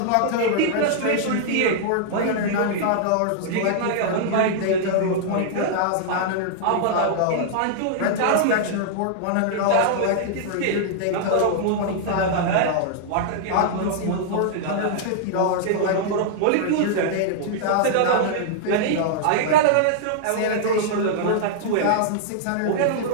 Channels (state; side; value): different; both; correlation -0.01